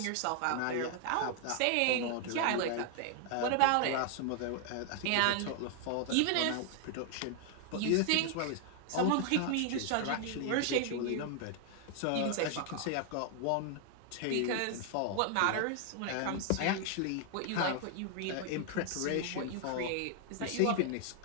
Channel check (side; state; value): both; different; correlation 0.00